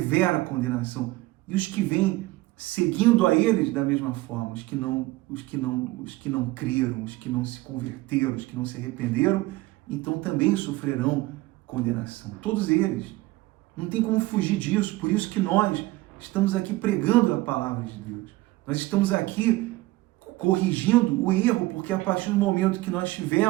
condenação. E os que vêm seguindo a eles da mesma forma, os que não creram, os que não se converteram, os que não se arrependeram, então também sofrerão condenação. Todos eles. Não tem como fugir disso. Por isso que nós estamos aqui pregando a palavra de Deus. Nós estamos aqui corrigindo o erro, porque a partir do momento que nós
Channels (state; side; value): quieter; left; 19.2 dB